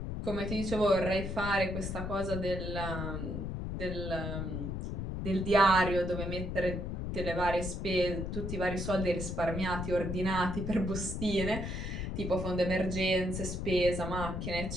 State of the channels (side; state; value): left; noise; rumble, 4 dB below the sound